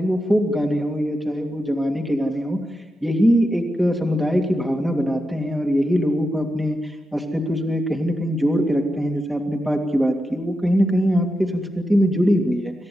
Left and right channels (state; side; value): normal; both; correlation 0.88